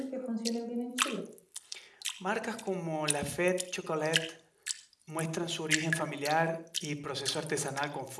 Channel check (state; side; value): identical; both; correlation 1.00